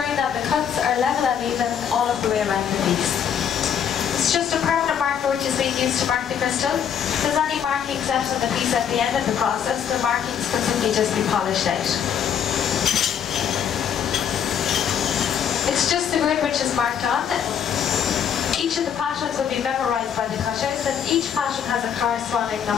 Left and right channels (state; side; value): quieter; right; 8.4 dB